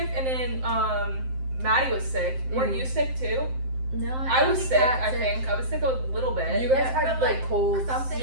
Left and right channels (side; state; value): left; late; 7.7 ms